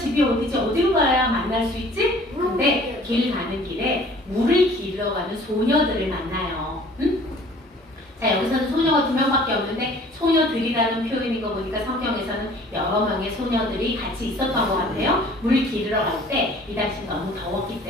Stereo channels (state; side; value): normal; both; correlation 0.51